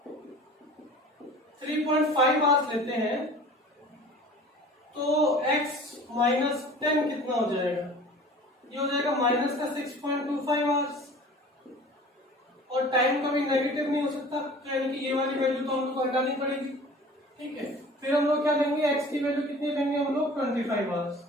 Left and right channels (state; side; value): normal; both; correlation 0.43